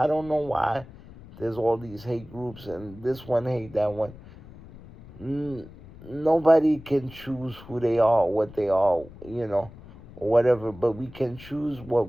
don't know why there's all these hate groups and this one hate that one. Nobody can choose who they are, what they are, or whatever. But we can choose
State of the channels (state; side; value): noise; left; rumble, 19 dB below the sound